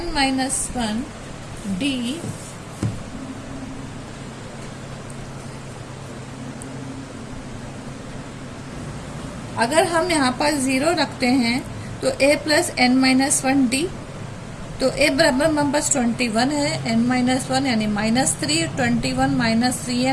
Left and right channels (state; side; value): identical; both; correlation 1.00